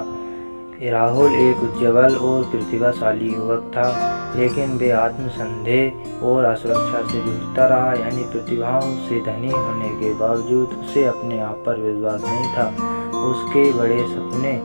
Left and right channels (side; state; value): both; inverted; correlation -1.00